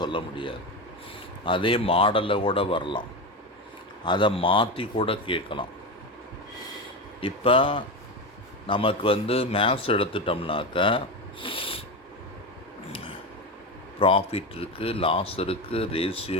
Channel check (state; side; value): normal; both; correlation 0.18